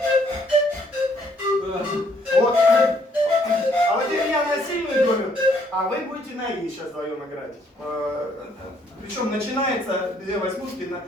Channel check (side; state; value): both; normal; correlation 0.67